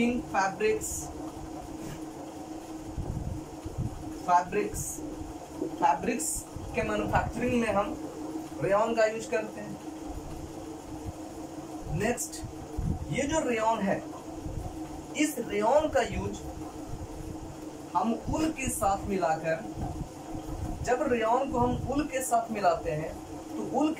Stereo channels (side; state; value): both; identical; correlation 1.00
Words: फैब्रिक्स के मैन्युफैक्चरिंग में हम रेयॉन का यूज करते हैं। नेक्स्ट, ये जो रेयॉन है, इस रेयॉन का यूज हम उल के साथ मिलाकर, जब रेयॉन को हम उल के साथ मिलाते हैं तो उल